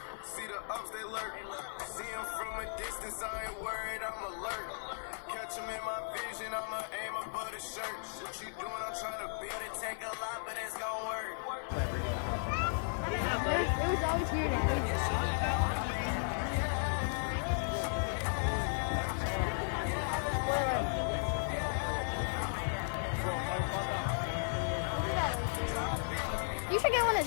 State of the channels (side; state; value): right; silent; digital silence